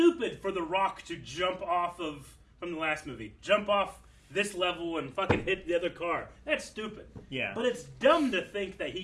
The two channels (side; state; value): both; identical; correlation 1.00